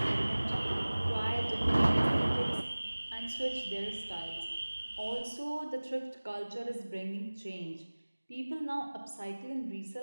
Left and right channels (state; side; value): inverted; both; correlation -1.00